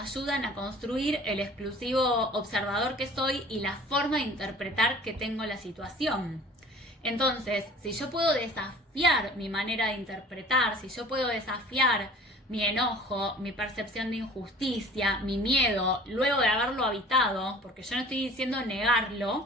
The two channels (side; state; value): both; normal; correlation 0.47